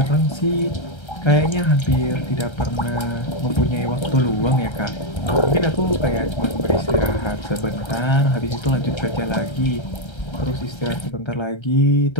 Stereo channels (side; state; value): right; late; 1.3 ms